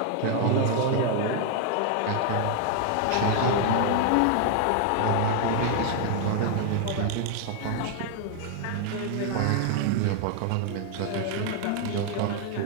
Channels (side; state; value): both; different; correlation 0.00